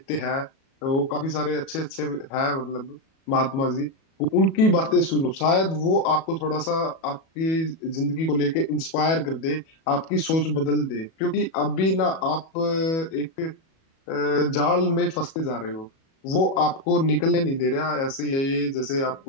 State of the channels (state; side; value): late; right; 37 ms